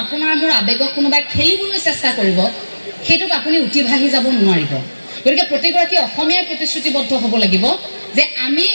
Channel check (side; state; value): both; inverted; correlation -1.00